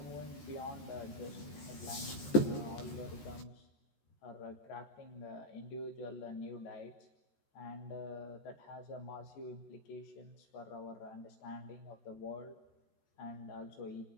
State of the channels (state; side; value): late; right; 14 ms